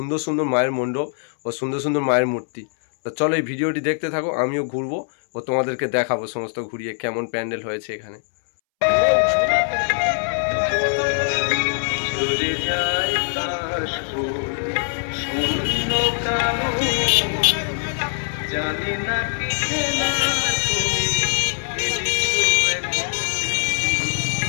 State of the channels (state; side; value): silent; right; 64 dB below the other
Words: সুন্দর মায়ের মণ্ডপ ও সুন্দর সুন্দর মায়ের মূর্তি। তো চলো এই ভিডিওটি দেখতে থাকো, আমিও ঘুরবো ও তোমাদেরকে দেখাবো সমস্ত ঘুরিয়ে কেমন প্যান্ডেল হয়েছে এখানে। জানি না কি খেলা